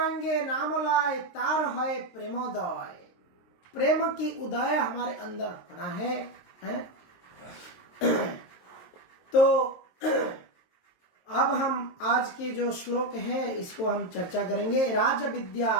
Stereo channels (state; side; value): late; right; 23 ms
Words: नाम लाए तार है प्रेमोदय, प्रेम की उदय हमारे अंदर होना है। तो अब हम आज के जो श्लोक है इसको हम चर्चा करेंगे। राज विद्या